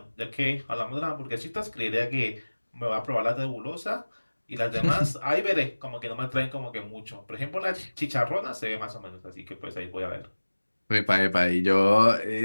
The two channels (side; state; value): both; inverted; correlation -1.00